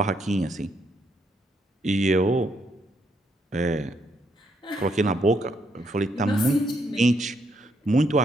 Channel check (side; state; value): both; normal; correlation 0.74